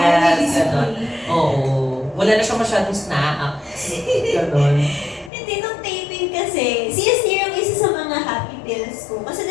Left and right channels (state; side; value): drops out; right; at 5.3 s